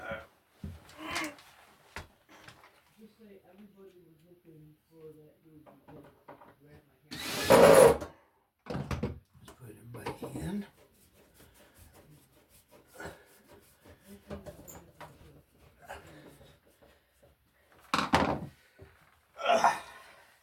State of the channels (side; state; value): both; identical; correlation 1.00